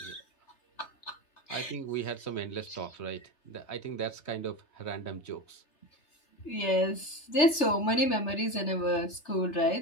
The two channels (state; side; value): late; right; 3.3 ms